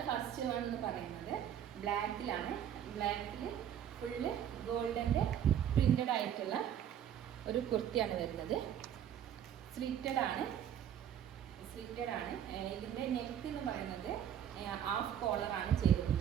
ഫസ്റ്റ് വൺ എന്ന് പറയുന്നത്. ബ്ലാക്കിലാണ്. ബ്ലാക്കിൽ ഫുള്ള് ഗോൾഡൻ്റെ പ്രിന്റഡ് ആയിട്ടുള്ള ഒരു കുർത്തിയാണ് വരുന്നത്. സ്ലിറ്റഡ് ആണ്. ഇതിൻ്റെ നെക്ക് എന്ന് പറയുന്നത് ഹാഫ് കോളറാണ്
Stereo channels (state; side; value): quieter; left; 9.7 dB